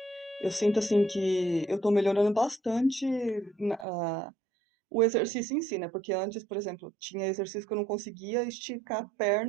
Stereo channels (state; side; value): drops out; left; at 3.9 s